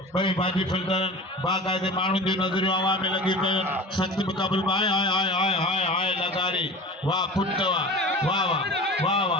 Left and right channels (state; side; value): normal; both; correlation 0.36